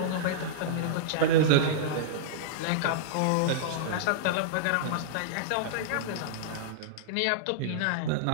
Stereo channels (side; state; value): both; different; correlation -0.02